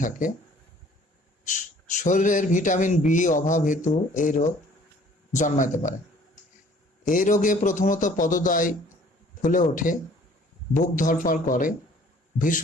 থাকে। শরীরের ভিটামিন বি অভাব হেতু এই রোগ জন্মাতে পারে। এই রোগে প্রথমত পদদ্বয় ফুলে ওঠে, বুক ধড়ফড় করে,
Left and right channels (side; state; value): both; normal; correlation 0.55